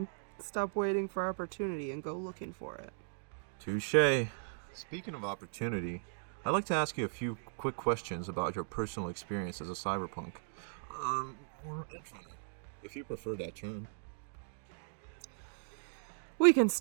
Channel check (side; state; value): left; silent; digital silence